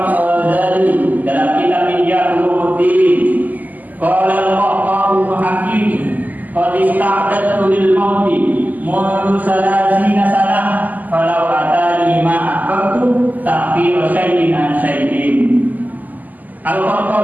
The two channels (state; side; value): late; left; 0.082 ms